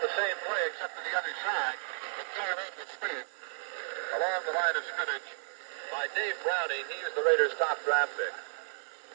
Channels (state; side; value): quieter; left; 39.1 dB